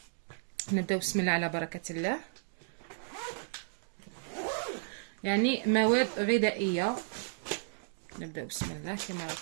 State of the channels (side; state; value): left; silent; digital silence